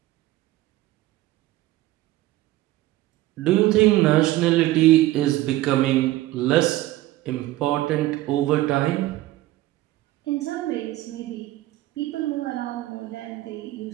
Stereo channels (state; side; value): quieter; left; 16.6 dB